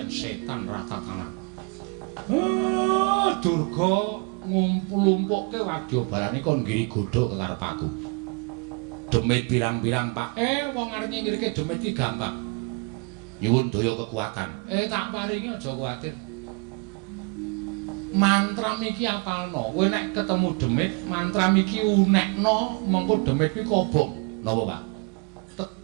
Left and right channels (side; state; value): left; quieter; 31.6 dB